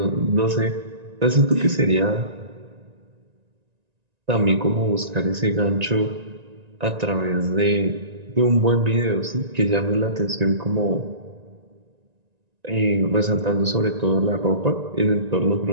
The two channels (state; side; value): late; left; 1.9 ms